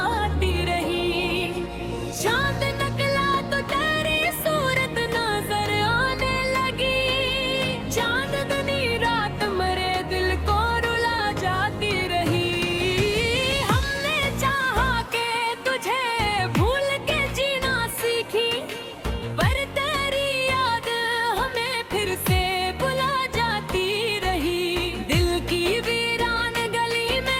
रही। चांद निकला तो तेरी सूरत नजर आने लगी, चांदनी रात मरे दिल को रुला जाती रही। हमने चाहा के तुझे भूल के जीना सीखी, पर तेरी याद हमें फिर से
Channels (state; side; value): identical; both; correlation 1.00